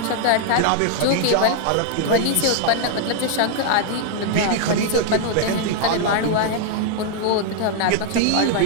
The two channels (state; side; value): different; both; correlation 0.00